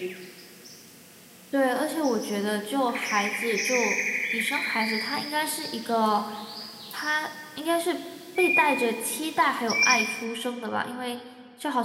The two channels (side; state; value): both; identical; correlation 1.00